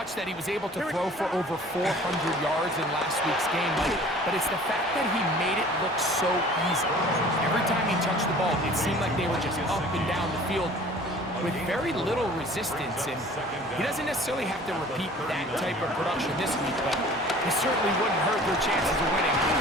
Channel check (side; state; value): both; normal; correlation 0.48